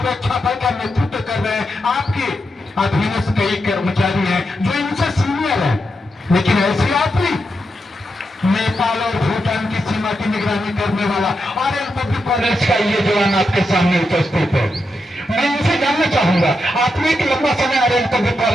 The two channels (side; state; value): both; normal; correlation 0.85